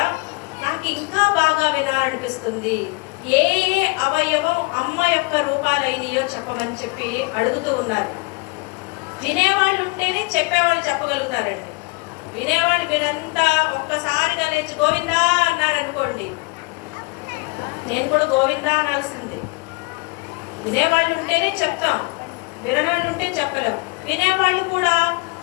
నాకు ఇంకా బాగా వినాలనిపిస్తుంది. ఏ ఏ అవయవం అమ్మ యొక్క రూపాలైనయో చెప్పమని చెప్పి అడుగుతూ ఉన్నారు. వినేవాళ్ళు ఉంటేనే చెప్పేవాళ్ళు చెప్పగలుగుతారండి. వినేవాళ్ళు మీరంతా ఒక్కసారిగా లేచి గోవిందా అన్నారనుకోండి, నేను కూడా గోవిందా అనాల్సిందే. వినేవాళ్ళు ఉంటేనే చెప్తాం, వినడాలు ఉంటే చెప్పలేం. వినేవాళ్ళు కూడా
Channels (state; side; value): quieter; right; 28.7 dB